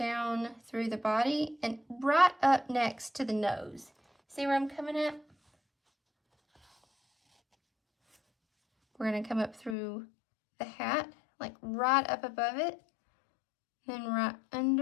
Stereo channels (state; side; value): drops out; right; at 9.8 s